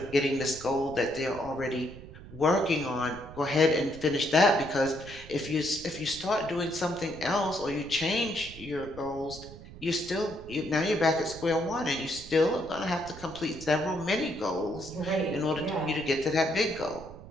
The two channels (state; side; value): noise; right; rumble, 16 dB below the sound